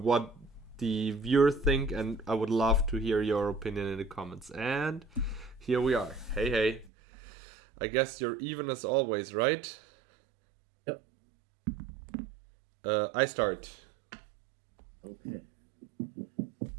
the viewers think, and I would love to hear your opinion in the comments. And here we are. Hey. I guess you're even as always, right? Yep. I start. Okay.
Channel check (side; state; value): left; drops out; at 6.9 s